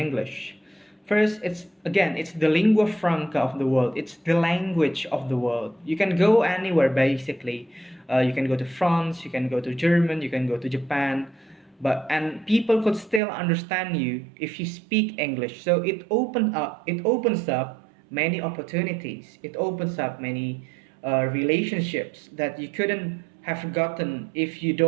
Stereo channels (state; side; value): drops out; left; at 13.2 s